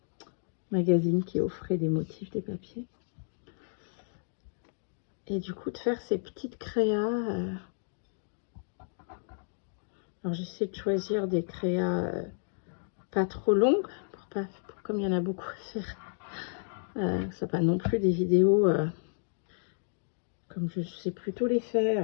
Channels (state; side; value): silent; right; digital silence